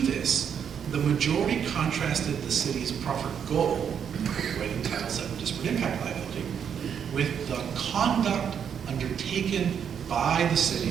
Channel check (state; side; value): quieter; left; 7.9 dB